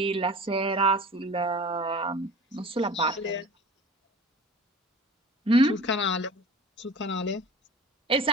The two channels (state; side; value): normal; both; correlation 0.39